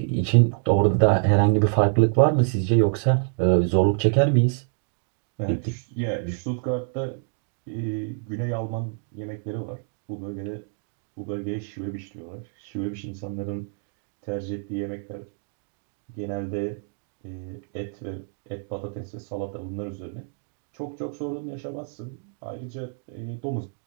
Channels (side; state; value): left; silent; digital silence